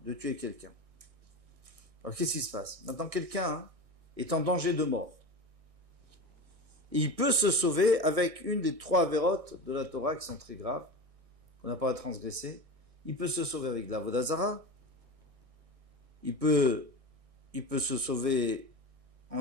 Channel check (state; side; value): late; left; 1.6 ms